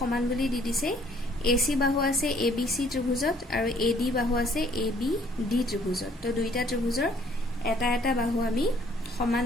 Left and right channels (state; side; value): normal; both; correlation 0.61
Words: বুলি দি দিছে AC বাহু আছে ABC ত্ৰিভুজত আৰু AD বাহু আছে ABD ত্ৰিভুজত তো দুইটা ত্ৰিভুজৰ এটা এটা বাহু আমি সমান